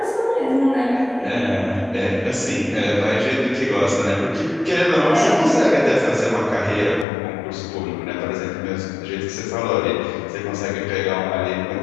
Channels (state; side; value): drops out; right; at 7.1 s